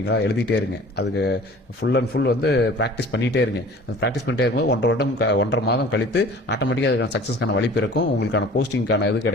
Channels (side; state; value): both; normal; correlation 0.46